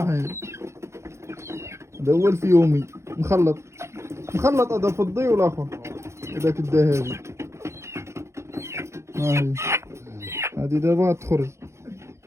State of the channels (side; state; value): left; late; 0.13 ms